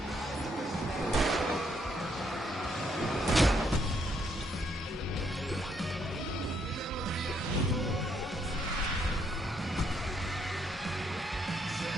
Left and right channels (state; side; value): normal; both; correlation 0.73